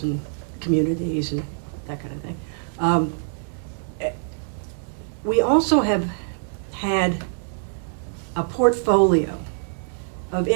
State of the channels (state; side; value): silent; left; digital silence